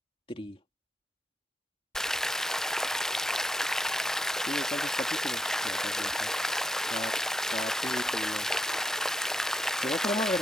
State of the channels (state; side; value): normal; both; correlation 0.80